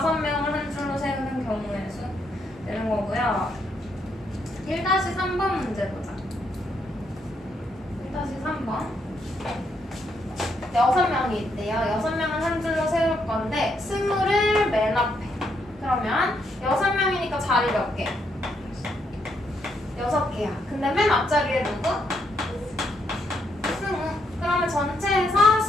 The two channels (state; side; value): normal; both; correlation 0.76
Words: 한 줄로 세우는 경우의 수 되는 거고요. 1-3번 문제 보자. 1-3번. 6명이 있대요. 6명은 한 줄로 세울 건데 20을 맨 앞에. 그러면 6명이니까 자리 몇 개? 6개야. 근데 맨 앞자리에 누구? 승우. 그러면 전체에서